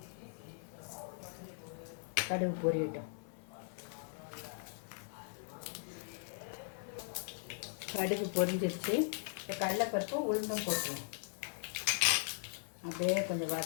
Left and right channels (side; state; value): right; silent; 52 dB below the other